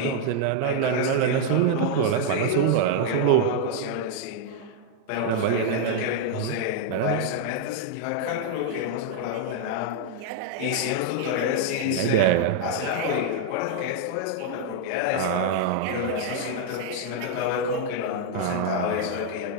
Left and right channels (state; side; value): different; both; correlation 0.00